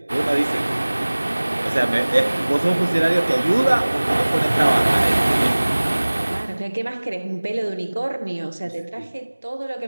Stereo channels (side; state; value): both; inverted; correlation -1.00